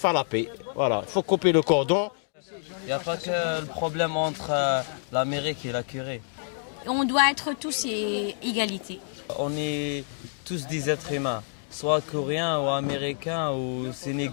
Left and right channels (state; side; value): silent; right; digital silence